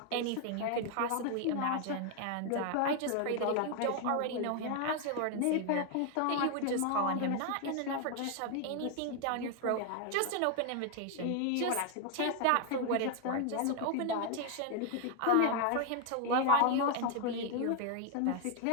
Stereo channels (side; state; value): both; different; correlation 0.00